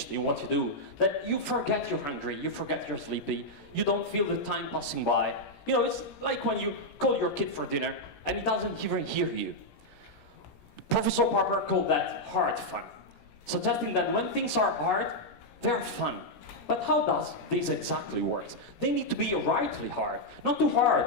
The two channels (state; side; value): late; right; 17 ms